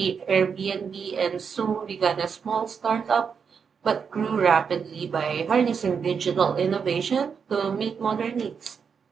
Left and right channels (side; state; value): left; quieter; 6.4 dB